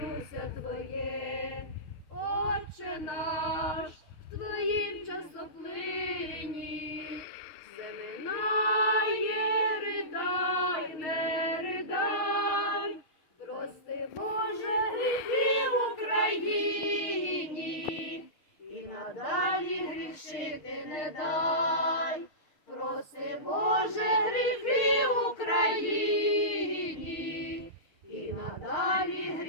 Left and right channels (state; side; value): late; right; 6.5 ms